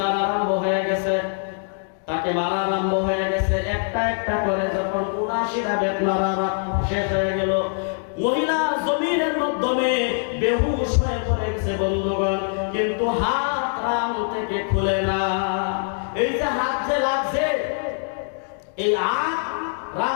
আরম্ভ হয়ে গেছে, তাকে মারা আরম্ভ হয়ে গেছে। একটা একটা করে যখন 79টা বেত মারা শেষ হয়ে গেল, মহিলা জমিনের মাধ্যমে বেহুশ হয়ে পড়ে গেছে বন্ধুগণ, কিন্তু হাত রাম থেকে খুলে না। এই যে হাত যে লাগছে, এই হাত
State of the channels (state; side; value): silent; right; digital silence